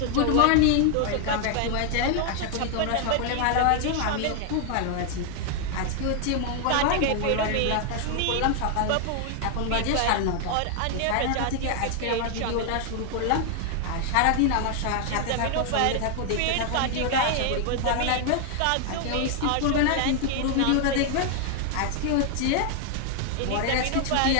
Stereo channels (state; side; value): different; both; correlation 0.00